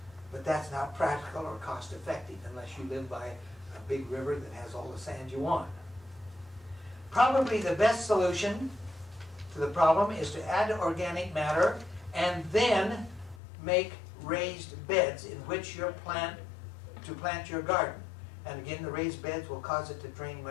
But that's not practical or cost effective unless you live by a big river that has all the sand you want. Probably the best solution to the problem is to add organic matter and then make raised beds in which you plant your garden. And again, the raised beds will cause it to drain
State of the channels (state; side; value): drops out; right; at 13.4 s